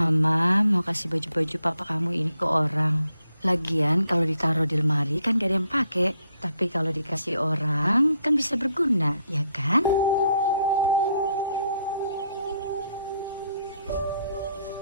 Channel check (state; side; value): inverted; both; correlation -0.73